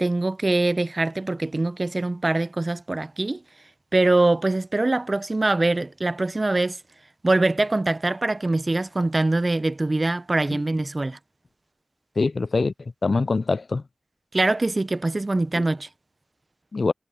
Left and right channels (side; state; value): both; normal; correlation 0.98